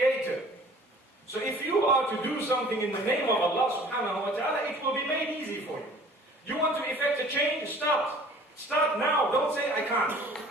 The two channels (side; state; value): both; normal; correlation 0.49